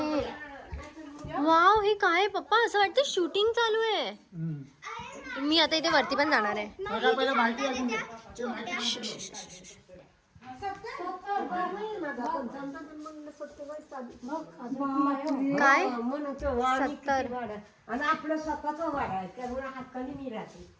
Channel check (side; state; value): both; identical; correlation 1.00